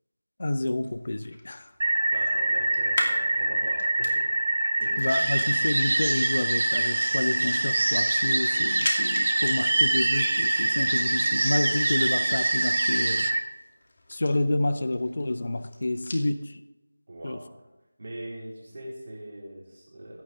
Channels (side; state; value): both; inverted; correlation -0.96